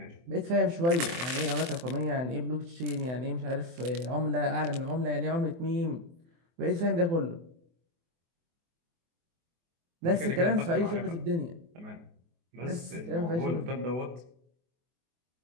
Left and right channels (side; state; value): left; late; 24 ms